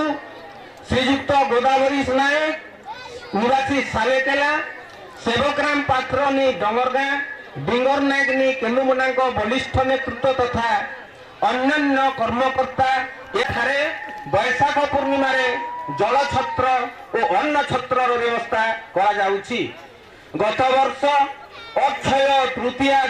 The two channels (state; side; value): identical; both; correlation 1.00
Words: श्रीयुक्त गोदावरी नायक निवासी सालेकेला सेवकराम पात्र नी डंगरगा डिंगर नायक नी केन्दुमुड़ा बलिष्ठ नेतृत्व तथा अन्य कर्मकर्ता एठारे बैशाख पूर्णिमा जल छत्र और अन्न छत्र व्यवस्था करा जाउछि। गत वर्ष अक्षय तृतीया